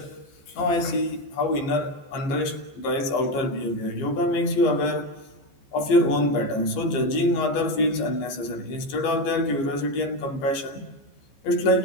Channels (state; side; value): late; right; 15 ms